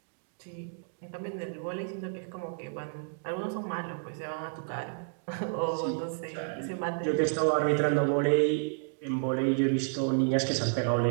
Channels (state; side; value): silent; left; digital silence